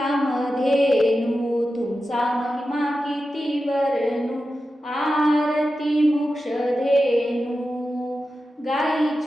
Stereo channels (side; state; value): both; normal; correlation 0.92